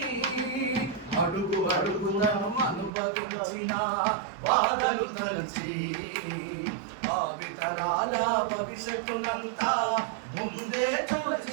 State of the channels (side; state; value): left; drops out; at 2.9 s